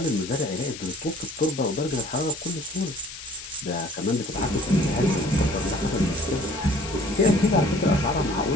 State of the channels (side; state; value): left; noise; hiss, 12 dB below the sound